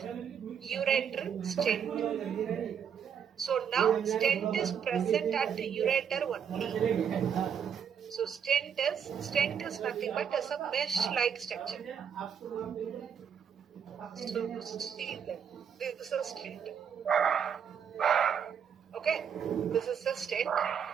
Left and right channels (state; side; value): quieter; left; 7.7 dB